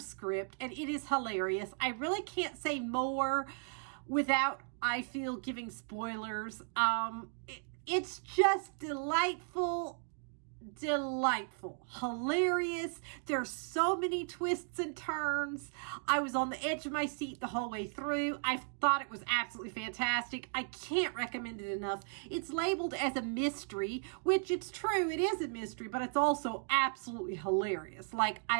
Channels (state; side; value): silent; left; 54 dB below the other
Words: and it is hilarious. I really can't say more without, I feel, giving spoilers. It's just delightful, hilarious. There's so many twists and turns. I was on the edge of my seat the whole way through. I thought it was absolutely fantastic. I can't recommend it enough. It's labeled as a mystery, which it's true, it is a mystery, but it's also absolutely hilarious. Like,